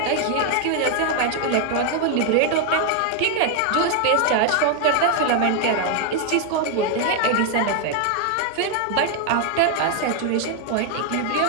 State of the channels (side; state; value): both; different; correlation 0.00